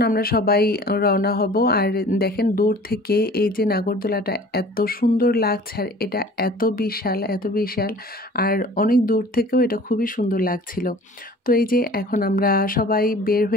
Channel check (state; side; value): normal; both; correlation 0.47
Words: আমরা সবাই রওনা হব। আর দেখেন দূর থেকে এই যে নাগরদোলাটা এত সুন্দর লাগছে, আর এটা এত বিশাল এত বিশাল, আর অনেক দূর থেকেও এটা খুবই সুন্দর লাগছিল। তো এই যে এখন আমরা সবাই বের